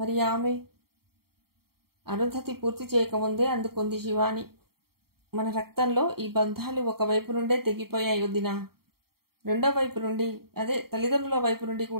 ఆమె? అరుంధతి పూర్తి చేయకముందే అందుకుంది శివాని. మన రక్తంలో ఈ బంధాలు ఒకవైపు నుండే తెగిపోయాయి వదినా. రెండో వైపు నుండి, అదే తల్లిదండ్రుల వైపు నుండి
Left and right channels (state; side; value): late; left; 0.94 ms